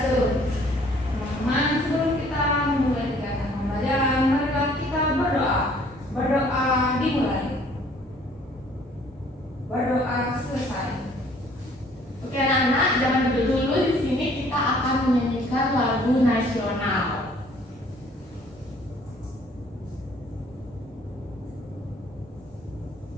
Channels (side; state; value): both; normal; correlation 0.58